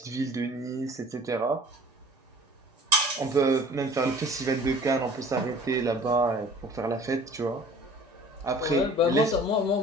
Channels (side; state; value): both; normal; correlation 0.47